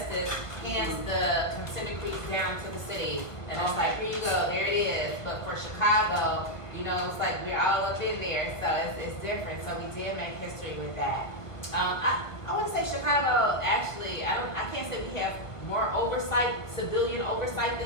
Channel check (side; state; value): right; late; 1.3 ms